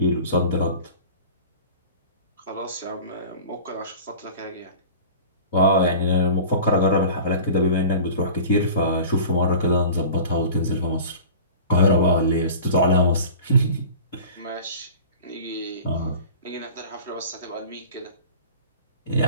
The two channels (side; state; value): both; inverted; correlation -0.39